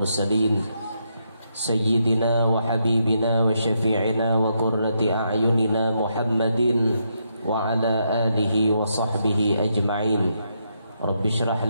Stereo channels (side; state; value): both; inverted; correlation -0.79